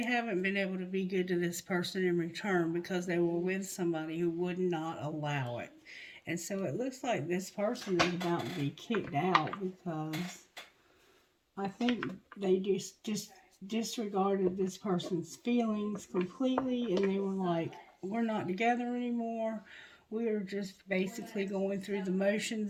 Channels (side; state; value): both; identical; correlation 1.00